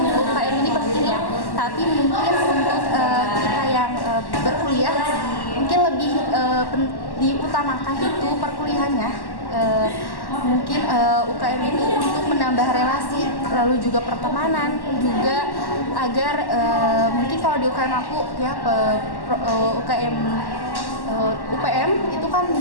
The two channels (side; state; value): right; late; 1.1 ms